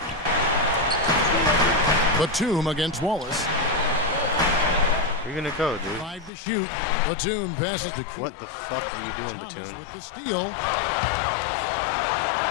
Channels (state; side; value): drops out; right; at 6.3 s